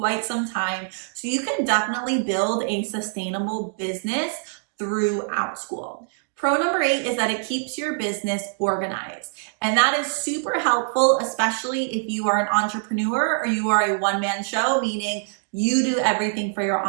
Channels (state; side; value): silent; left; digital silence